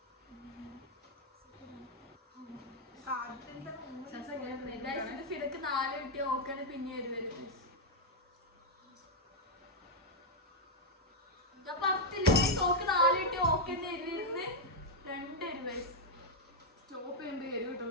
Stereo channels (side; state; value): both; normal; correlation 0.00